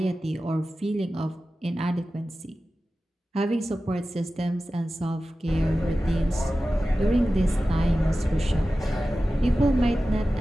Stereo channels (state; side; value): normal; both; correlation 0.95